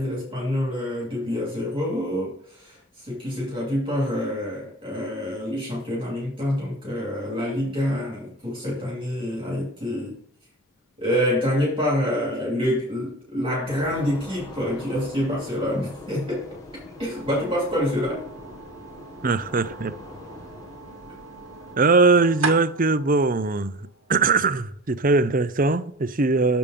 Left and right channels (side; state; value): both; normal; correlation 0.35